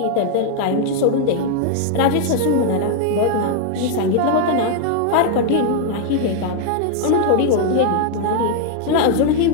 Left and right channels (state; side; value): different; both; correlation 0.00